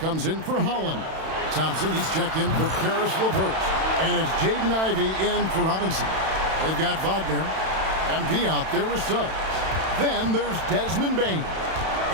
in for Holland. Thompson, he's checked in for Karis LeVert. And it's Jaden Ivey in for Robinson. They've got Wagner. MP out there with subs. Then there's Desmond Bain.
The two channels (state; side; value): late; left; 31 ms